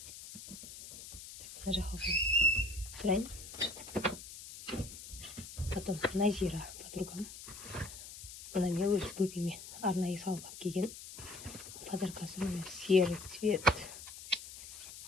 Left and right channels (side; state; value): left; noise; hiss, 13 dB below the sound